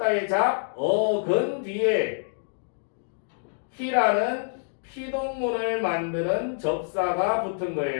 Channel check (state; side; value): silent; right; digital silence